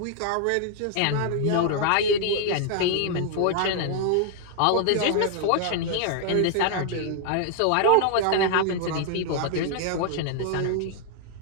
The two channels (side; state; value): both; different; correlation 0.00